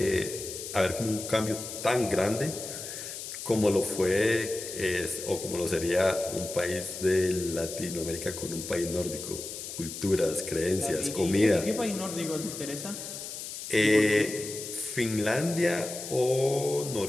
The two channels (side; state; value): left; noise; hiss, 9 dB below the sound